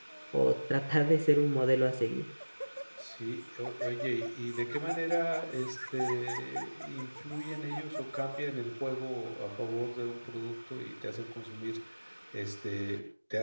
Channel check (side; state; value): both; inverted; correlation -1.00